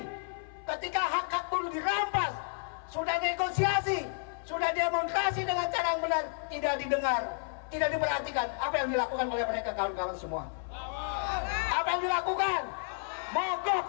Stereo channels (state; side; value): silent; right; 57 dB below the other